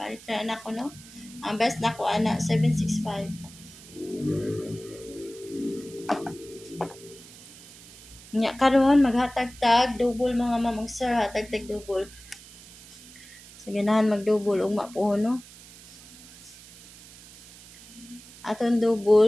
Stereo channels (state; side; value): noise; right; hiss, 19 dB below the sound